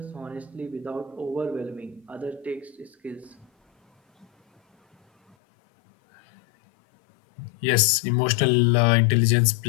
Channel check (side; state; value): right; drops out; at 5.4 s